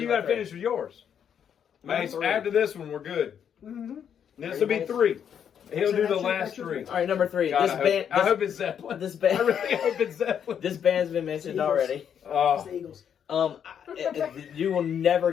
you got to finish with yours. Mace, after this one, we're good. Mm-hmm. This will be 3. He'll So do the that's your- last that's your 3. All right, number 3. God, This I hope it's Zeppelin. This band. I really hope it's Zeppelin. This band's been mentioned Eagles. already. It's Oh, the Eagles. You will never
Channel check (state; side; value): quieter; right; 8.3 dB